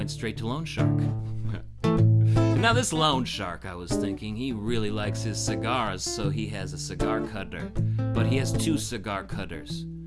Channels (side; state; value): both; identical; correlation 1.00